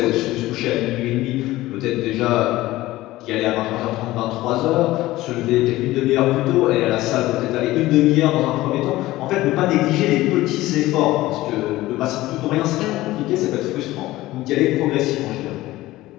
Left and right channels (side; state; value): right; quieter; 17.2 dB